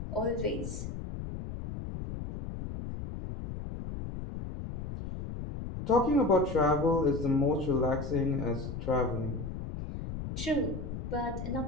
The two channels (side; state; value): left; noise; rumble, 7 dB below the sound